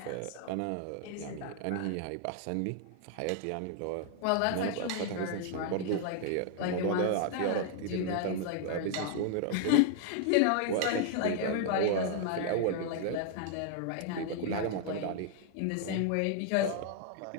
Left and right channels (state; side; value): different; both; correlation 0.00